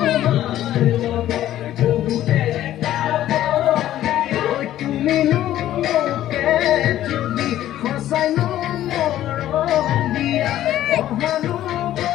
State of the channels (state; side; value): quieter; right; 13.0 dB